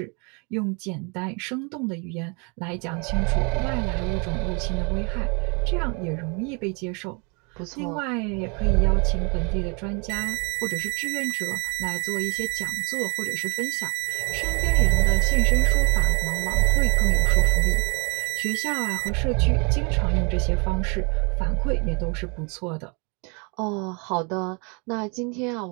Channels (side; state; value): left; quieter; 33.0 dB